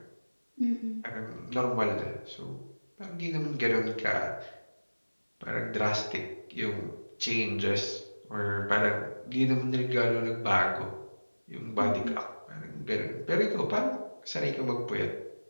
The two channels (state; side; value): inverted; both; correlation -1.00